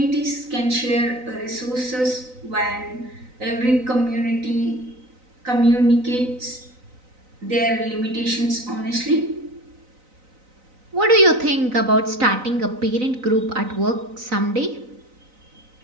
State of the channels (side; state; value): left; late; 3.9 ms